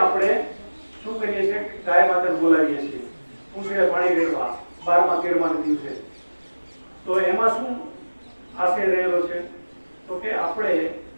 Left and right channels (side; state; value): both; inverted; correlation -1.00